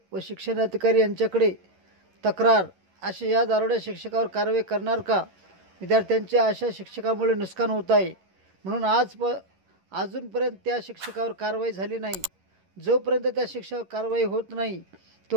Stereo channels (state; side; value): late; left; 11 ms